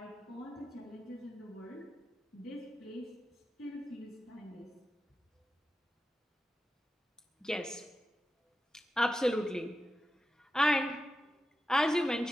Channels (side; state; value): both; normal; correlation 0.91